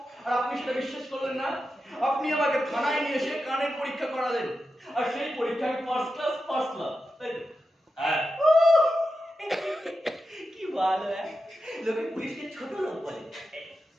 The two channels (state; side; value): normal; both; correlation 0.90